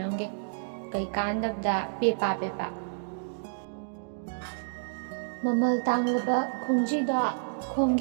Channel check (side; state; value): left; silent; digital silence